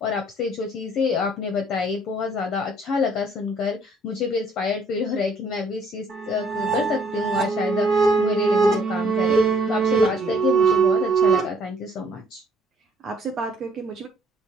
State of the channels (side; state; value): both; normal; correlation 0.62